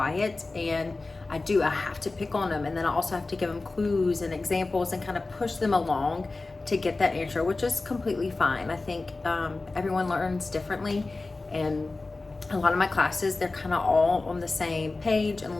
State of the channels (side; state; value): right; quieter; 3.4 dB